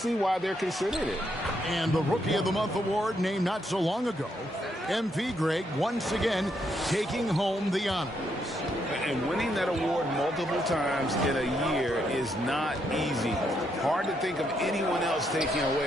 why they're considering it. And the Rookie of the Month award named not so long ago, MP Greg once again taking home the honors. And winning that award multiple times in a year is not easy. Hard to think of anyone else taking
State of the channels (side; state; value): both; normal; correlation 0.77